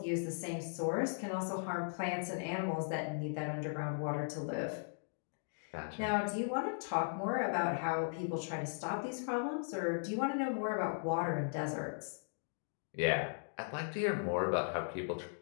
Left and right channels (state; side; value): silent; right; digital silence